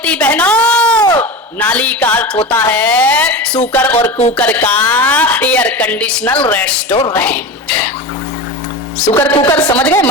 बहनों, नाली का अर्थ होता है सुकर और कुकर का एयर कंडीशनल रेस्टोरेंट। सुकर कुकर समझ गए,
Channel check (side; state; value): both; normal; correlation 0.26